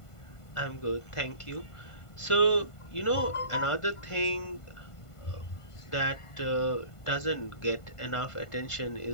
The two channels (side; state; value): right; late; 1.5 ms